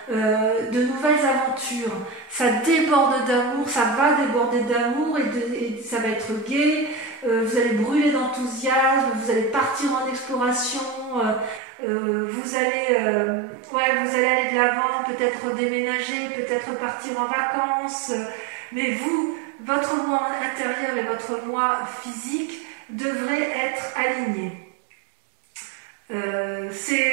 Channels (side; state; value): left; drops out; at 11.6 s